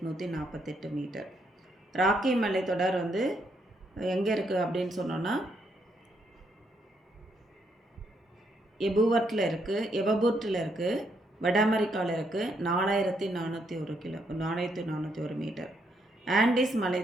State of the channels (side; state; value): both; normal; correlation 0.75